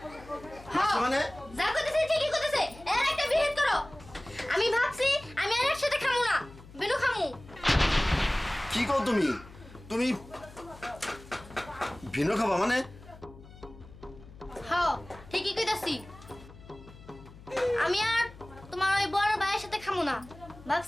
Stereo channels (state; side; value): noise; left; hum, 19 dB below the sound